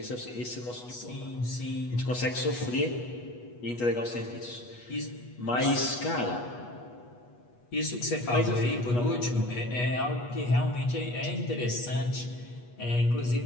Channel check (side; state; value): right; late; 8.3 ms